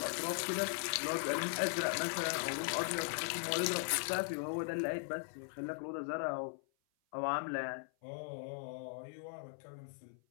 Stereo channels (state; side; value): silent; right; 52 dB below the other